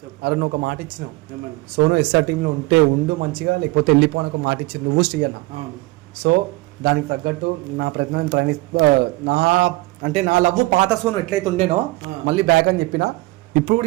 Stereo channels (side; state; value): left; quieter; 21.6 dB